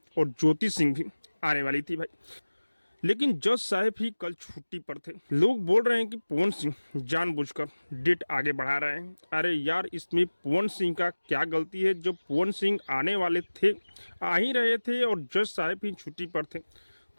और ज्योति सिंह भी आने वाली थी भाई। लेकिन जज साहब ही कल छुट्टी पर थे। लोग बोल रहे हैं कि पवन सिंह जानबूझकर डेट आगे बढ़ा रहे हैं। अरे यार, इसमें पवन सिंह का क्या गलती है? जब पवन सिंह आने वाले थे, आ ही रहे थे और जज साहब ही छुट्टी पर थे,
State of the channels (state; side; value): inverted; both; correlation -1.00